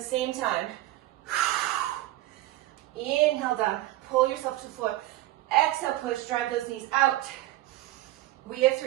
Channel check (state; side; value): quieter; left; 16.4 dB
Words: same time. Inhale down, pull yourself to the floor. Exhale, push, drive those knees out. We have